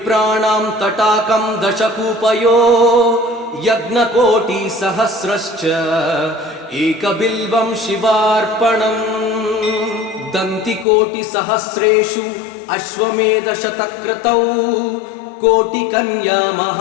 तटाकं दशकूपयो यज्ञकोटिसहस्रश्च एकबिल्वं शिवार्पणम् दन्तिकोटिसहस्रेषु अश्वमेधशतक्रतौ कोटिकन्या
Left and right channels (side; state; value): right; drops out; at 10.9 s